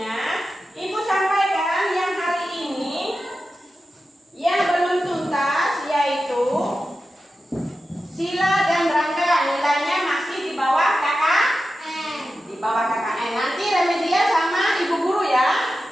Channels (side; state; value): both; normal; correlation 0.92